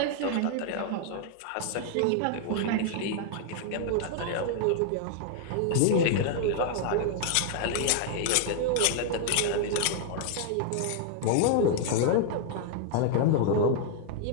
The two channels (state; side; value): different; both; correlation 0.00